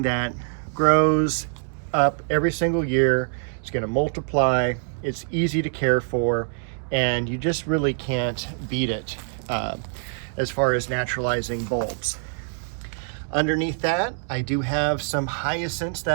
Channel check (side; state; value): left; silent; 62 dB below the other